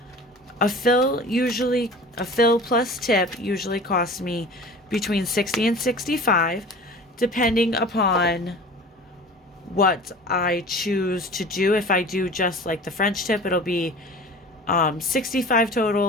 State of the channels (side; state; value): both; normal; correlation 0.40